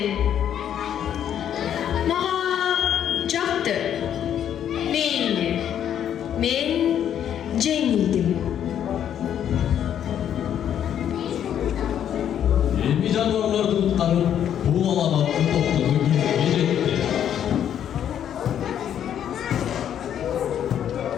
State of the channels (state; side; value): quieter; right; 9.7 dB